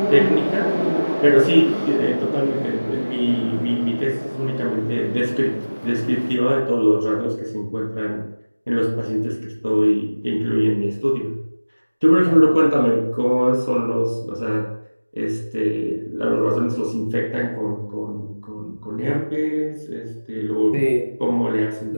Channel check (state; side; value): inverted; both; correlation -1.00